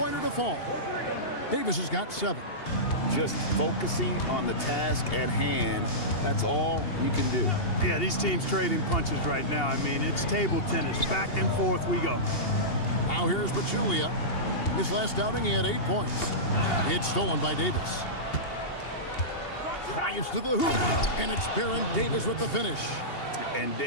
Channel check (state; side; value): late; right; 2.8 ms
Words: to fall. Davis has got 7. Just focusing on the task at hand. That's all you can do. Yeah, these teams trading punches right now. I mean, it's table tennis. Back and forth we go. Now here's Pachulia. His last outing, he had 8 points. It's stolen by Davis. Drives to the hoop, and it's Baron Davis with the finish. And